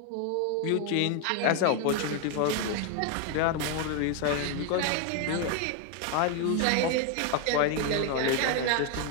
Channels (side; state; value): both; different; correlation 0.01